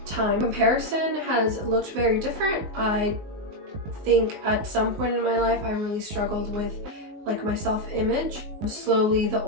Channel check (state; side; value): late; left; 19 ms